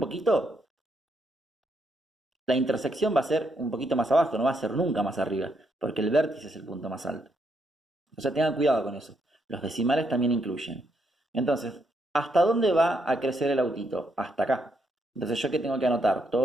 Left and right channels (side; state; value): both; normal; correlation 0.77